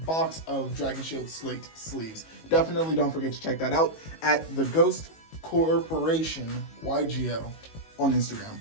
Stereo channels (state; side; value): late; right; 19 ms